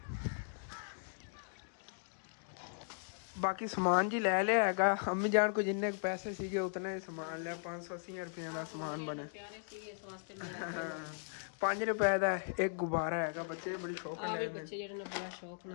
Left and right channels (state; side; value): silent; right; digital silence